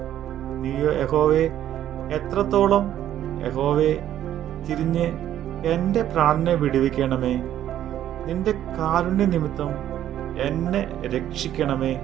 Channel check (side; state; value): left; quieter; 11.5 dB